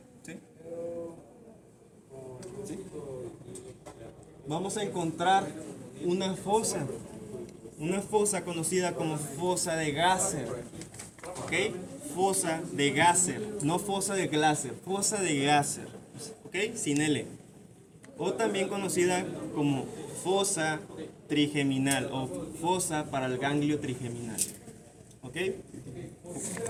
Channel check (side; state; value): both; identical; correlation 1.00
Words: ¿Sí? ¿Sí? Vamos a encontrar una fosa conocida como fosa de Gasser, ¿ok? Fosa de Gasser, no fosa de Glaser, fosa de Gasser, ¿ok? Sin L. O también conocida como fosa trigeminal o fosa para el ganglio trigeminal, ¿ok?